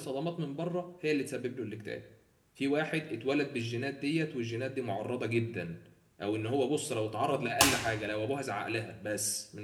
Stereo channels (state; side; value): identical; both; correlation 1.00